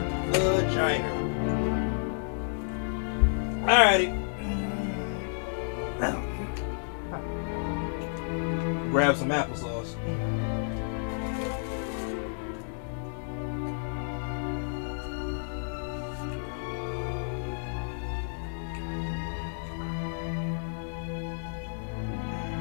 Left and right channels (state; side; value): silent; right; digital silence